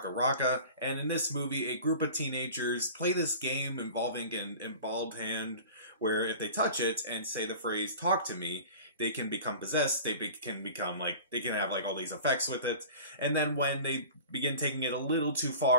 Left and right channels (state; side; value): inverted; both; correlation -0.39